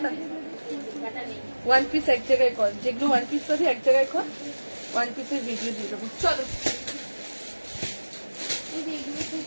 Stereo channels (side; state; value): both; inverted; correlation -1.00